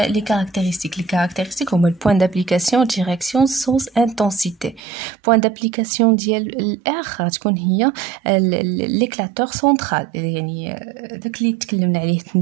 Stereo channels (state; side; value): drops out; left; at 4.8 s